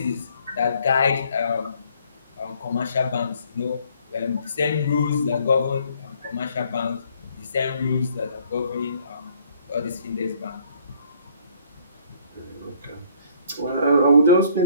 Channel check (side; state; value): both; inverted; correlation -0.63